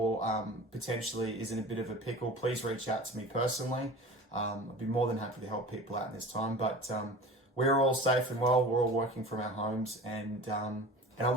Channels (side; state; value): both; normal; correlation 0.38